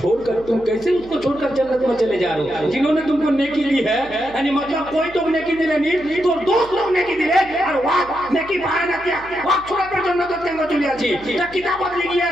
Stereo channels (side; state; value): right; noise; hum, 21 dB below the sound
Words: तुम कैसे उसको छोड़कर जन्नत में चले जा रहे हो जिन्होंने तुमको नेकी दी है यानी मतलब कोई तो नेकी दिले नहीं तो दोस्त लोग नेकी दिले और वाह नेकी पाया ना किया वाह छोड़ कर जन्नत में चले आछी ता किताबत लिखी है